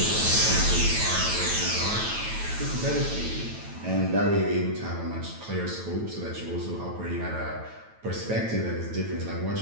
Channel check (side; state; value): left; late; 9.1 ms